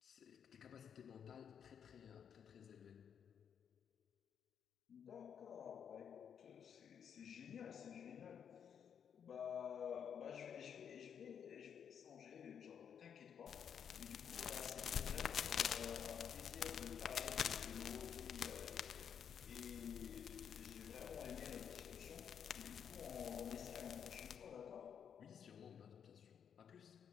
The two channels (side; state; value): right; quieter; 8.0 dB